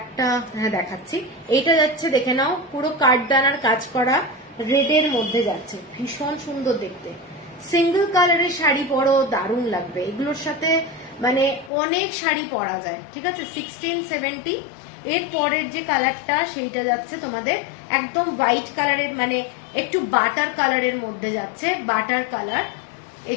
হ্যাঁ দেখাচ্ছি। এইটা যাচ্ছে দেখে নাও, পুরো কাঠদানার কাজ করা, রেডের মধ্যে যাচ্ছে, ভীষণ সুন্দর দেখতে। সিঙ্গেল কালারের শাড়ি পরো, দারুণ লাগবে এগুলোর সাথে, মানে অনেক শাড়ি পরা যায়, ঠিক আছে। 1670। এর পরের যে কালারটা সেইটা যাচ্ছে তোমাদের একদম হোয়াইট কালারের, মানে একটু বাটার কালারের মধ্যে যাচ্ছে, বাটার কালার।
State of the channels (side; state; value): right; drops out; at 11.7 s